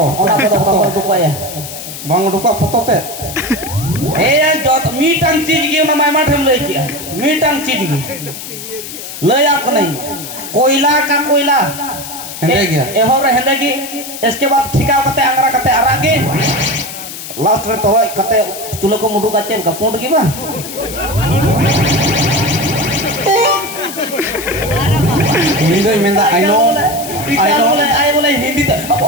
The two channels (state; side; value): noise; left; hiss, 10 dB below the sound